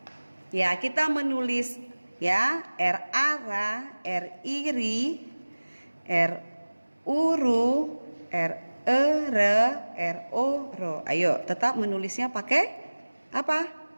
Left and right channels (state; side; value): inverted; both; correlation -1.00